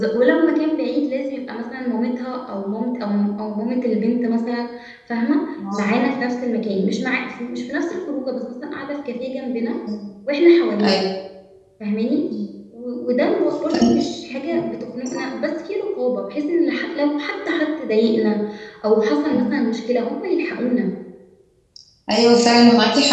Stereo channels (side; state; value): both; identical; correlation 1.00